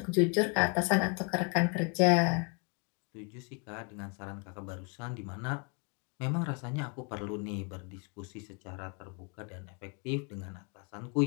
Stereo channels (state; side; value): quieter; right; 34.4 dB